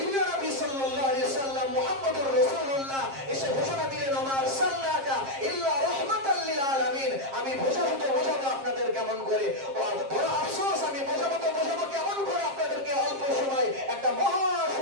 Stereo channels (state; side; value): late; left; 7.5 ms